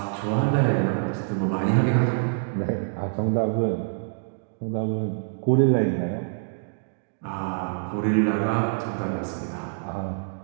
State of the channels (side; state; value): left; silent; digital silence